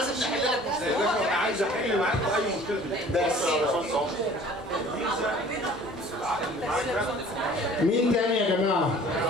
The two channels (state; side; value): normal; both; correlation 0.50